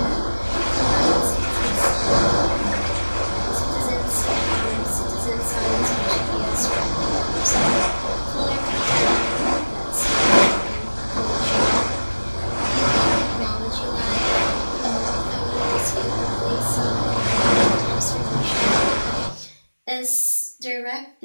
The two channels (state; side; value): inverted; both; correlation -1.00